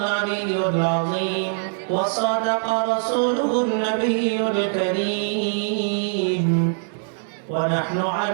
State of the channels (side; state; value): left; silent; digital silence